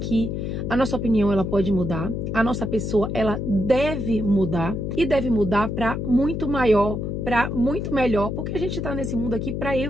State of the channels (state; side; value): noise; left; hum, 3 dB below the sound